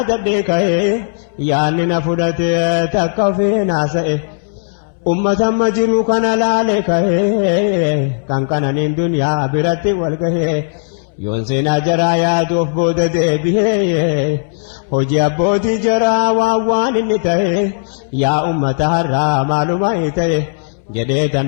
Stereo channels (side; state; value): right; silent; 67 dB below the other